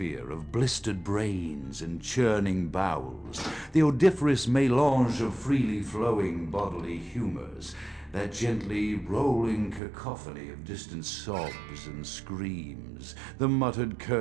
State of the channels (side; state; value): left; drops out; at 9.8 s